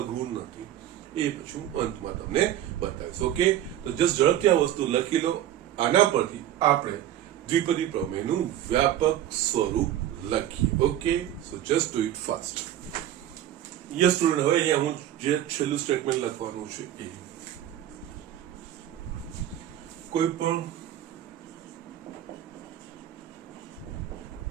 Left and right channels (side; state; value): left; quieter; 11.9 dB